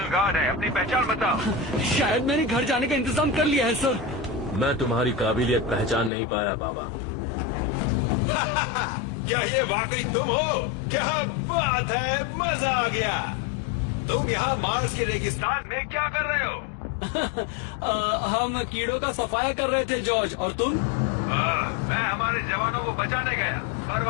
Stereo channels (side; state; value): right; drops out; at 6.1 s